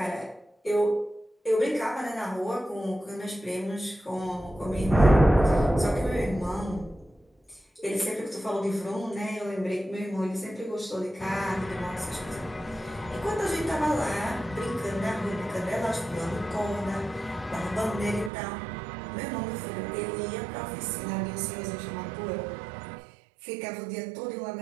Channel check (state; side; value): drops out; left; at 18.3 s